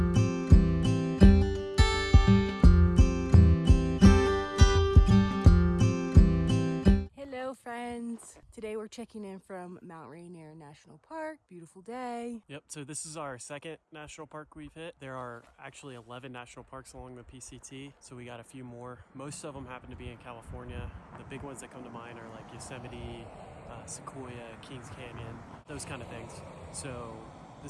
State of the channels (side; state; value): both; identical; correlation 1.00